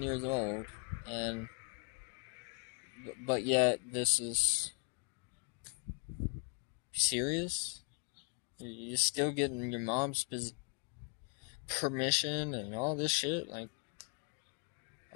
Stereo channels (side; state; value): right; quieter; 35.1 dB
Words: years old. And, but yet, this is... serious? You're still getting your mom's permission and all this shit? Like,